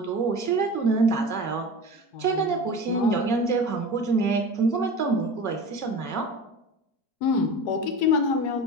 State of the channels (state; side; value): late; right; 4.9 ms